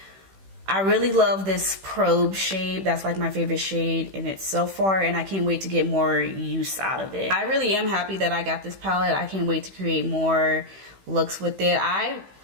I really love this probe shade. That's like my favorite shade in it so far, and I can't wait to get more use out of it. I really am happy that I got this palette. I can't wait to create more looks with it. I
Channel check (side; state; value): left; late; 16 ms